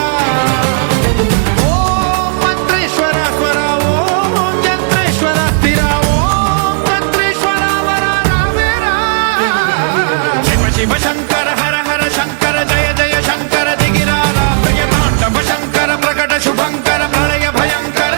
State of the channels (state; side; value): silent; left; digital silence